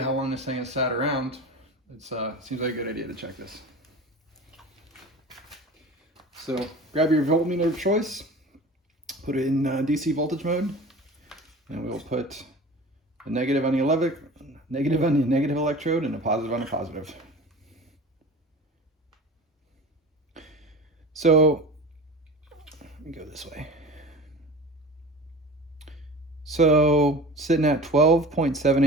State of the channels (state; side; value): normal; both; correlation 0.36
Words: how long this thing has sat around, it seems like a good idea to check this. So grab your voltmeter of choice, put it in DC voltage mode, and we'll put a negative on the negative electrode and a positive on a positive. So let me go this way. So sitting at